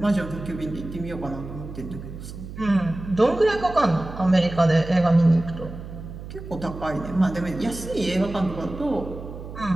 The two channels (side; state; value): right; noise; hum, 11 dB below the sound